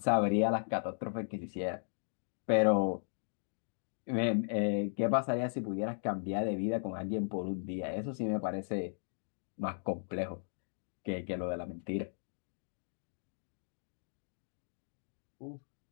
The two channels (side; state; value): right; silent; digital silence